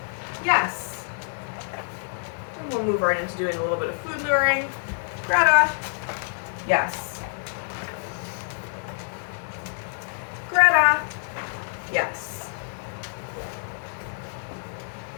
Yes. And we'll move right into doing a little bit of food luring. Greta. Yes. Greta. Yes.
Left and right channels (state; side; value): silent; right; digital silence